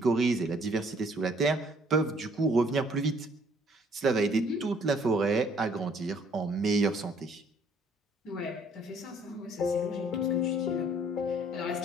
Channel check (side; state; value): both; normal; correlation 0.61